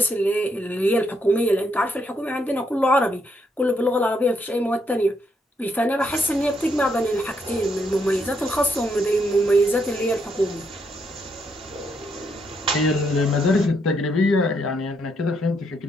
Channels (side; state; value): both; normal; correlation 0.76